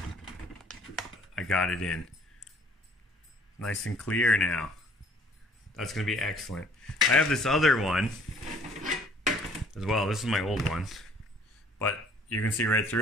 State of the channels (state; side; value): normal; both; correlation 0.56